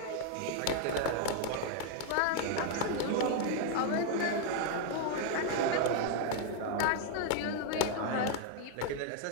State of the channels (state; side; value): different; both; correlation 0.00